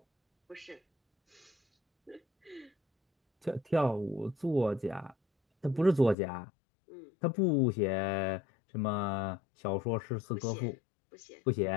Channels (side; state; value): right; drops out; at 6.2 s